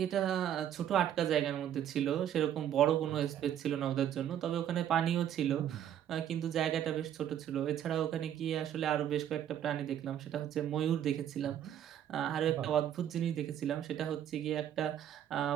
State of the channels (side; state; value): left; quieter; 10.4 dB